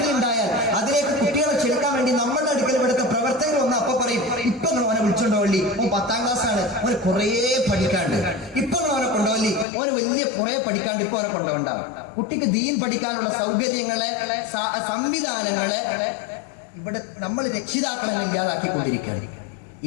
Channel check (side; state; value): right; drops out; at 9.7 s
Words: അതിലേക്ക് കുട്ടികളെ ക്ഷണിക്കാൻ വേണ്ടി നമ്മളുടെ അടുക്കൽ ഇവിടുത്തെ പ്രവർത്തകർ വന്ന് അപ്പൊ പറയും, ഇപ്പൊ അവനെ വിളിച്ചോണ്ടോളി, ഓൻ 10ാം ക്ലാസ്സാണ്, അവന് കുറേ പഠിക്കാണ്ട്. ഇപ്പൊ അവനെ കൊണ്ടുപോലി, അവന് വലിയ കുറേ പഠിക്കാണ്ട്, ഇപ്പൊ അവനെ കൊണ്ടുപോകണ്ടാവും. കുട്ടിക്ക് ദീൻ പഠിക്കാനുള്ള സൗകര്യങ്ങളെ, സംവിധാനങ്ങളെ ഇവിടെ നമ്മൾ രക്ഷിതാക്കളെ ഇല്ലാതാക്കിക്കൊണ്ടിരിക്കുകയാണ്.